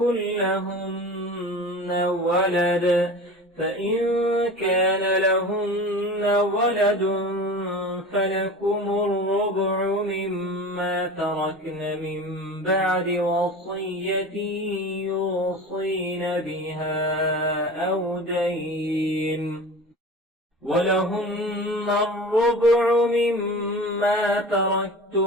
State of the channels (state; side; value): normal; both; correlation 0.35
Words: لهن ولد فإن كان لهن ولد فلكم الربع مما تركن من بعد وصية يوصين بها أو دين. ولهن الربع مما